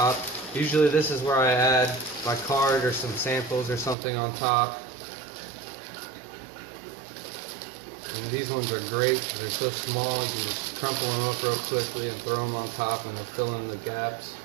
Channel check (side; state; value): left; drops out; at 4.0 s